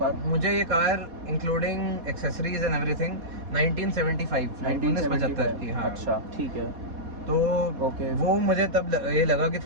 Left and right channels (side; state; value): left; late; 4.2 ms